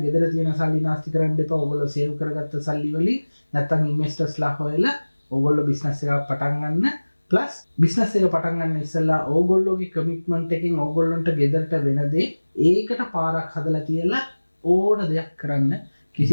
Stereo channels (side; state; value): both; inverted; correlation -1.00